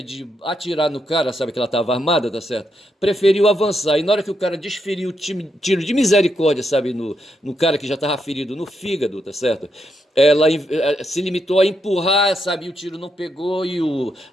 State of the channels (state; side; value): normal; both; correlation 0.81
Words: de atirar no cara, sabe que ela estava armada, tá certo? Preferiu avançar, e na hora que o cara desferiu o tiro de misericórdia, sabe, no cara que já estava ferido no fígado, tá certo? Ela se limitou a empurrar, sabe, e o tiro não pegou, e